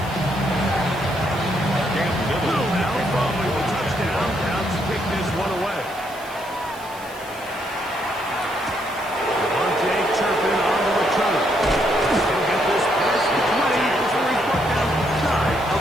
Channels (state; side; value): noise; right; hiss, 20 dB below the sound